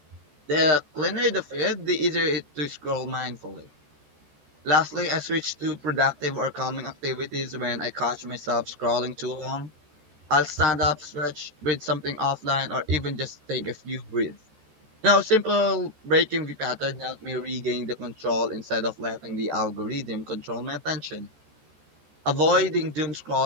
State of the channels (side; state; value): left; late; 14 ms